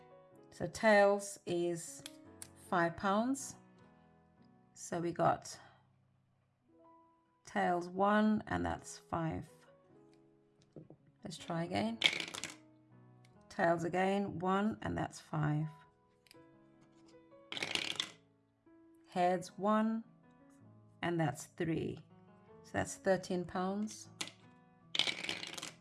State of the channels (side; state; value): both; identical; correlation 1.00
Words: So tails is £5. So we got tails 1 and that's 5. Let's try again. Tails again, 1 and that's 5. Heads 1 and that's 3. So that's £13.